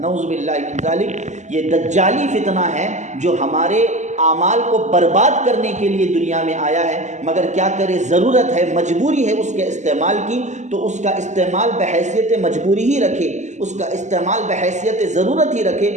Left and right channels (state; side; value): late; left; 0.34 ms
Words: نعوذ باللہ من ذالک، یہ دجالی فتنہ ہے جو ہمارے اعمال کو برباد کرنے کے لیے دنیا میں آیا ہے، مگر کیا کرے، ضرورت ہے، مجبوری ہے اس کے استعمال کی، تو اس کا استعمال بحیثیت مجبوری ہی رکھے، اس کا استعمال بحیثیت ضرورت ہی رکھے،